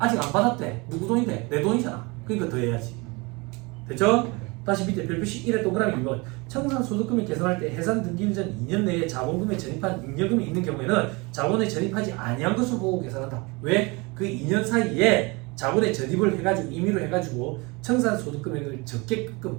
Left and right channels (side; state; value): left; quieter; 26.7 dB